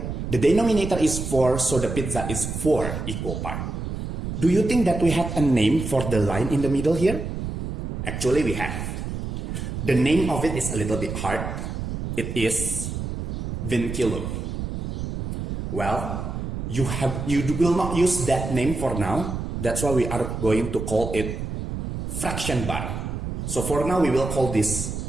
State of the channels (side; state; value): right; noise; rumble, 5 dB below the sound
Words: the denominator is 4, so the pizza is 4 equal parts. Do you think that we have a name for the line in the middle here? Actually, we have. The name of it is a little bit hard. It is vinculum. Well, you will not use that name for now. That's why we are going to call it fraction bar. So for now, we will call